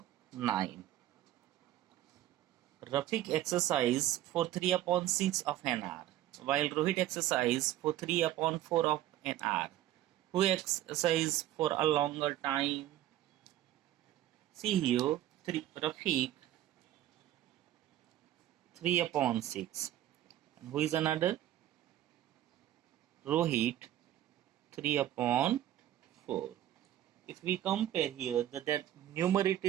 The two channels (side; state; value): left; quieter; 13.2 dB